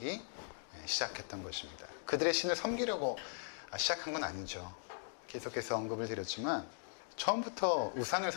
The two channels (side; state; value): right; silent; digital silence